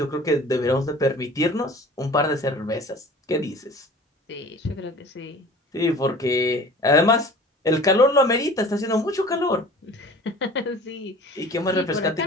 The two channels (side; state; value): both; normal; correlation 0.44